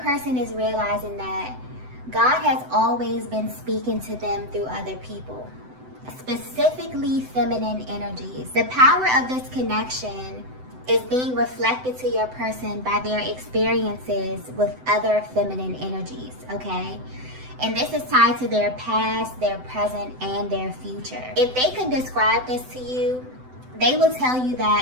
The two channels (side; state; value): left; late; 7.9 ms